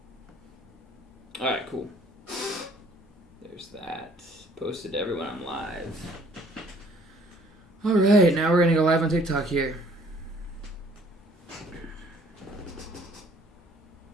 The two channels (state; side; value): normal; both; correlation 0.58